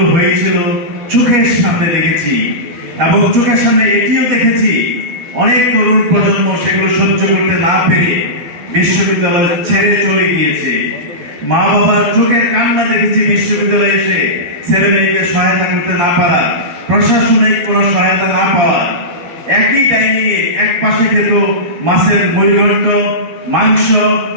হয়েছিল চোখের সামনে দেখেছি এবং চোখের সামনে এটিও দেখেছি অনেক তরুণ প্রজন্ম সেগুলো সহ্য করতে না পেরে বিশ্ববিদ্যালয় ছেড়ে চলে গিয়েছে। মা বাবার চোখের কান্না দেখেছি বিশ্ববিদ্যালয়ে এসে ছেলে মেয়েকে সহায়তা করতে না পারা, প্রশাসনিক কোন সহায়তা না পাওয়া। একই ডাইনিং এ এক পাশে খেত মাছের মুড়িঘণ্ট, মাংস,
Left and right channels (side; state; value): left; late; 12 ms